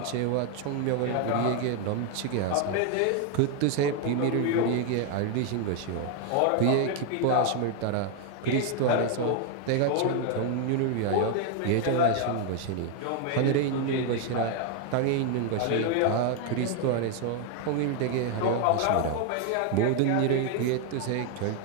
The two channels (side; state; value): both; different; correlation 0.01